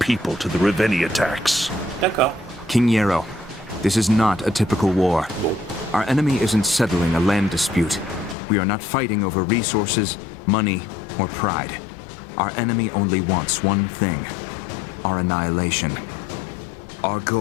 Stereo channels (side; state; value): right; drops out; at 8.3 s